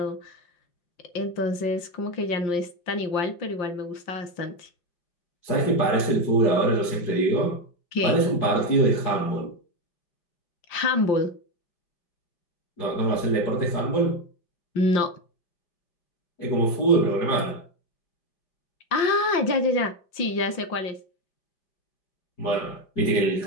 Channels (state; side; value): late; right; 5.7 ms